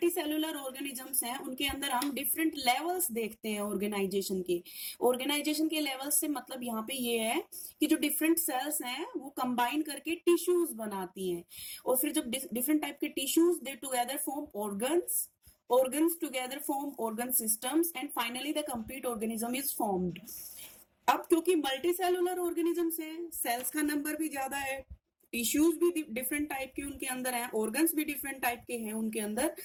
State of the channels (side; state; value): both; identical; correlation 1.00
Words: सेलुलर ऑर्गेनिजम्स हैं उनके अंदर हम डिफरेंट लेवल्स देखते हैं ऑर्गेनाइजेशन के। ऑर्गेनाइजेशन के लेवल्स से मतलब यहाँ पे ये है कि जो डिफरेंट सेल्स हैं वो कंबाइन करके टिश्यूज बनाती हैं, और फिर जब डिफरेंट टाइप के tissues they together form organs, organs together form organ systems, and finally the complete organism is formed। अब क्योंकि मल्टी सेलुलर ऑर्गेनिजम्स हैं, सेल्स का नंबर भी ज्यादा है, टिश्यूज भी डिफरेंट टाइप के उनके अंदर हैं, ऑर्गन्स भी डिफरेंट टाइप के हैं उनके अंदर।